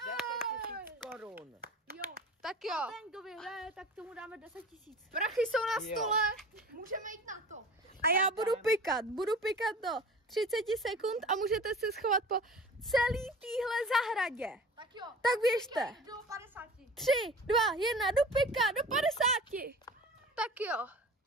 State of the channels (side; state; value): both; normal; correlation 0.40